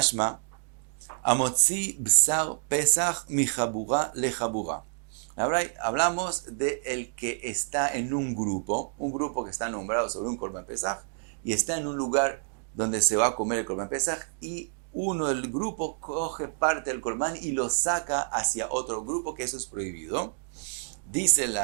amotzi bsar pesach mi jabura le jabura. Ahora hablamos de el que está en un grupo que está nombrado sobre un Korban Pesach, y está en un lugar donde se va a comer el Korban Pesach, y uno del grupo coge parte del Korban y lo saca hacia otro grupo, que eso es prohibido. Se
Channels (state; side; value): silent; left; digital silence